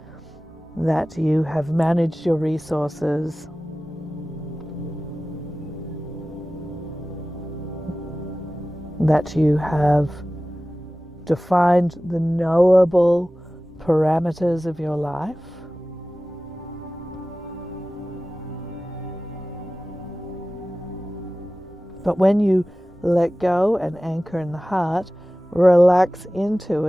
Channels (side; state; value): both; normal; correlation 0.96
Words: that you have managed your resources, that you have defined the knowable parameters of your life. But when you let go and anchor in the heart, relax into